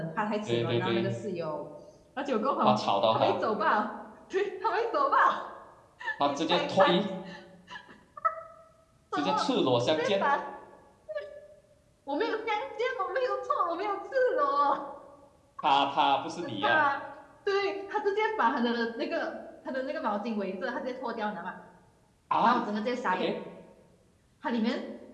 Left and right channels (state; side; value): identical; both; correlation 1.00